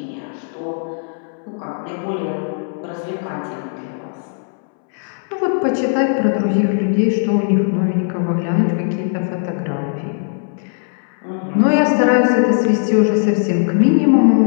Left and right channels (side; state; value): right; silent; 67 dB below the other